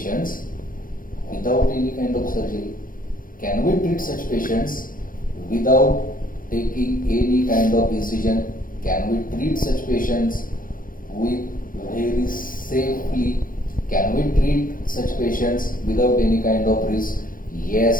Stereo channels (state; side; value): late; right; 0.40 ms